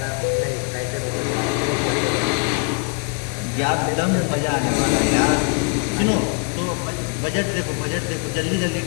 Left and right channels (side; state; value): right; quieter; 36.8 dB